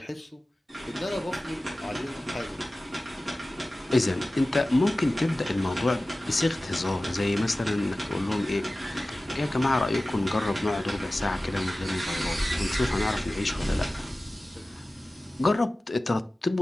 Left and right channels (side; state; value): both; normal; correlation 0.97